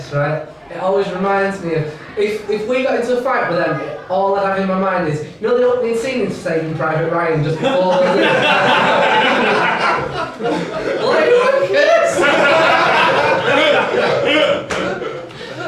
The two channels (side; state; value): both; identical; correlation 1.00